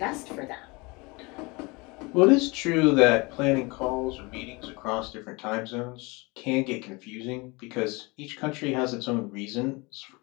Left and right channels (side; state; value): right; quieter; 26.2 dB